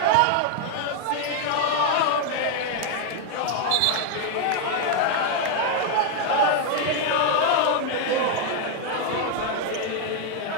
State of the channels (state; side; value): different; both; correlation 0.00